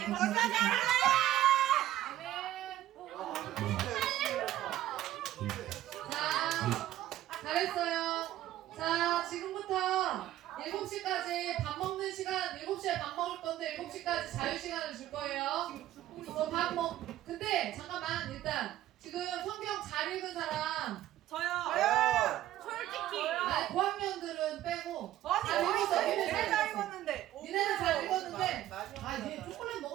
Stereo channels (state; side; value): quieter; left; 13.6 dB